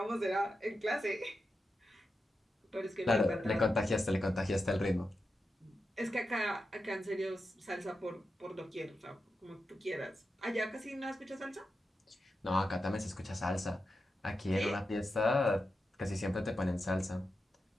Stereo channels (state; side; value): normal; both; correlation 0.89